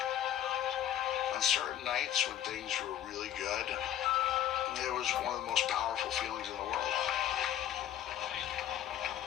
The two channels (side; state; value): right; quieter; 11.2 dB